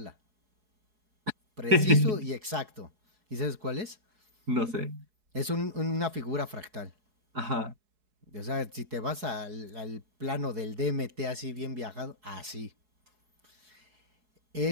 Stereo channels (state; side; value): late; left; 4.7 ms